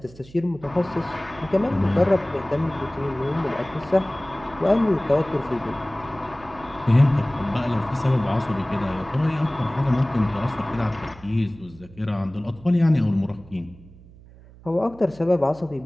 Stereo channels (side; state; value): right; noise; hum, 22 dB below the sound